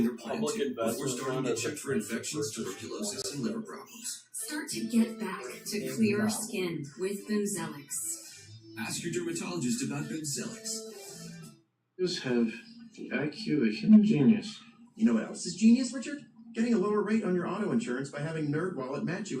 Arabia's or plan public to, investment before starting fund to is check for expensive infections, versus tuberculosis, and liver problems. Start to get back to clear skin with Bimzelx. Ask your dermatologist about Bimzelx. Just have the IQ of a human genius. You know what else is genius, Richard? Getting a lower rate on your auto insurance by having NerdWallet match you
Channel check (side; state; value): both; identical; correlation 1.00